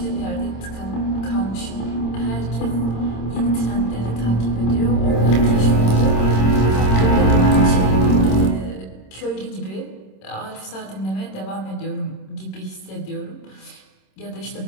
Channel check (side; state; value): right; late; 26 ms